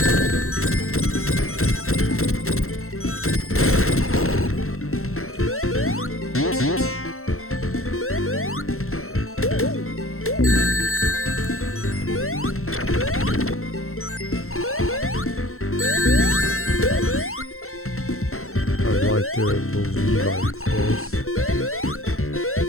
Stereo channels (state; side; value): late; right; 0.62 ms